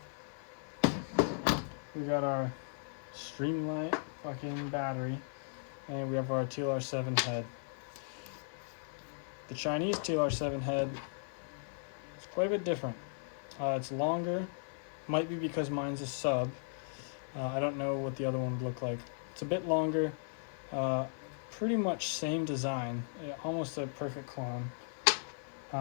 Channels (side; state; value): right; silent; 53 dB below the other